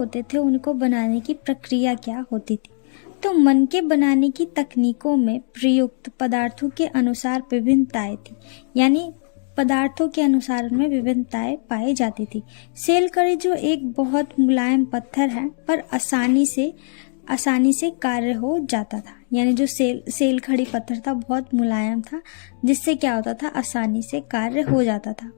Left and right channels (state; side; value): silent; right; 60 dB below the other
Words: थे उनको बनाने की प्रक्रिया क्या होती थी। तो मनके बनाने की तकनीकों में प्रयुक्त पदार्थों के अनुसार विभिन्नताएं थी, यानी पदार्थों के अनुसार में विभिन्नताएं पाई जाती थी। सेलकरी जो एक बहुत मुलायम पत्थर है पर आसानी से कार्य हो जाता था, यानी जो सेलखड़ी पत्थर था बहुत मुलायम था जिससे क्या होता था, आसानी से कार्य हो जाता था।